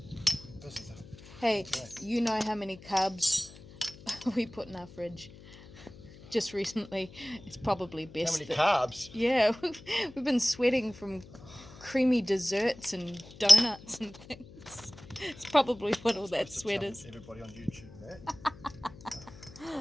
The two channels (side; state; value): left; noise; hum, 19 dB below the sound